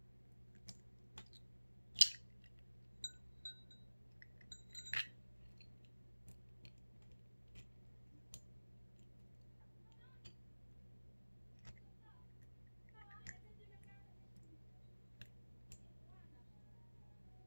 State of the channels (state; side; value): inverted; both; correlation -1.00